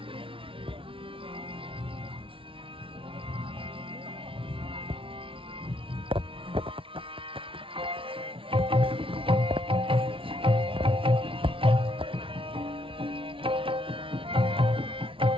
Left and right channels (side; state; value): left; late; 0.25 ms